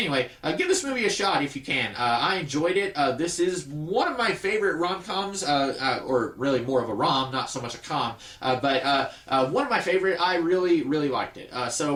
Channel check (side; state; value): both; identical; correlation 1.00